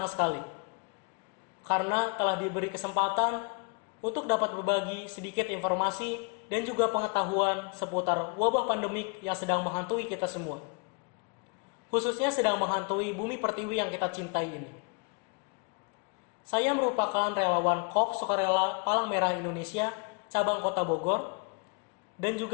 sekali karena telah diberi kesempatan untuk dapat berbagi sedikit informasi dan juga pengetahuan seputar wabah pandemik yang sedang menghantui kita semua. Khususnya sedang menghantui bumi pertiwi yang kita cintai ini. Saya merupakan relawan KOP Sukarela Palang Merah Indonesia, cabang Kota Bogor, dan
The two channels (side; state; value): right; quieter; 36.2 dB